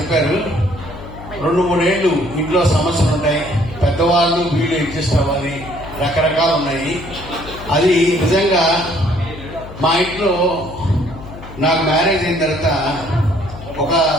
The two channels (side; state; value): left; noise; hum, 14 dB below the sound